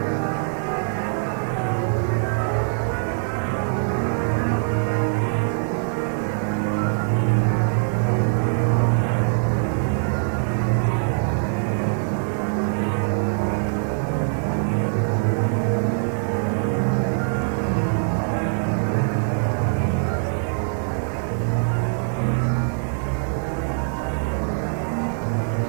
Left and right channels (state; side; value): silent; left; digital silence